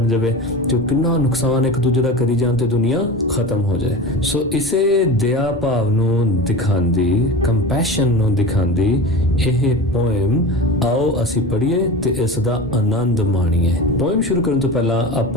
ਜਾਵੇ ਤੇ ਕਿੰਨਾ ਨੁਕਸਾਨ ਇੱਕ ਦੂਜੇ ਦਾ ਕਰੀ ਜਾਣ ਤੇ ਦੁਨੀਆ ਖਤਮ ਹੋ ਜਾਏ। ਸੋ ਇਸੇ ਦਇਆ ਭਾਵ ਨੂੰ ਦਿਖਾਉਂਦੀ, ਕੰਪੈਸ਼ਨ ਨੂੰ ਦਿਖਾਉਂਦੀ ਇਹ ਪੋਇਮ ਆਓ ਅਸੀਂ ਪੜ੍ਹੀਏ ਤੇ ਇਸ ਦਾ ਆਨੰਦ ਮਾਣੀਏ। ਪੋਇਮ ਸ਼ੁਰੂ ਕਰਨ ਤੋਂ ਪਹਿਲਾਂ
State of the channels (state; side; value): normal; both; correlation 0.30